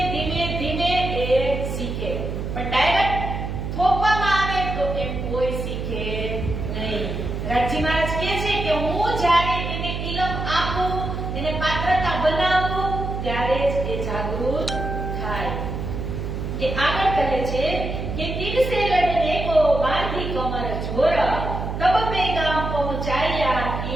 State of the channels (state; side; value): noise; right; hum, 4 dB below the sound